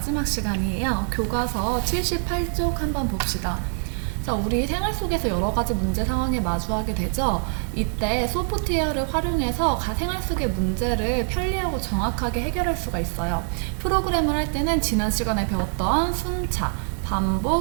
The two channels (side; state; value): left; silent; 62 dB below the other